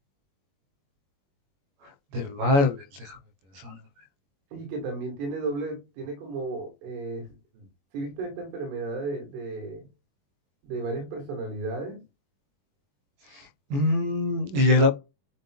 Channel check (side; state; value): left; late; 21 ms